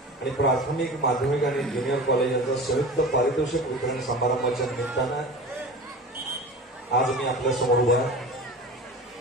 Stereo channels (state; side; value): normal; both; correlation 0.35